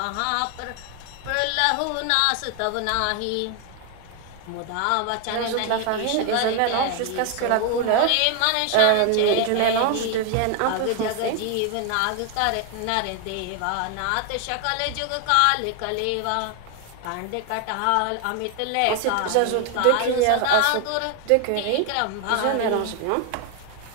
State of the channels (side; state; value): both; different; correlation 0.00